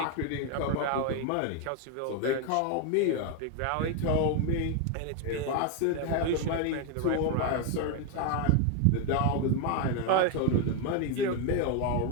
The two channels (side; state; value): both; different; correlation 0.01